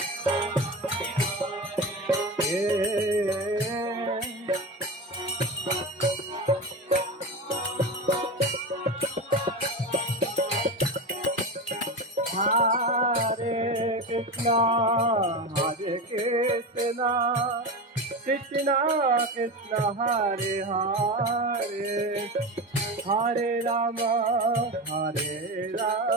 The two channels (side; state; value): both; normal; correlation 0.22